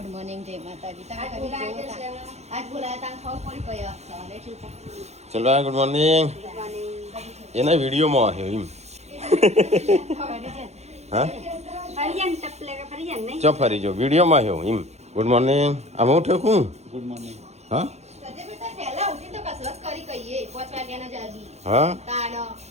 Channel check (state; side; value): late; left; 0.32 ms